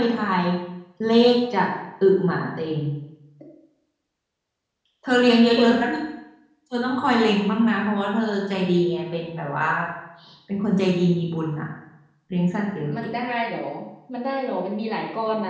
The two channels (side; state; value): both; identical; correlation 1.00